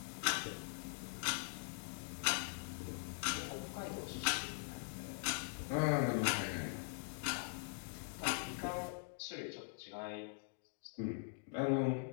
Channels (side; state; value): right; silent; digital silence